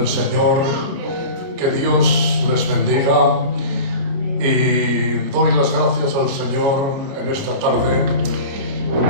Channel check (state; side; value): late; left; 29 ms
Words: Señor. Que Dios les bendiga y doy las gracias al Señor en esta tarde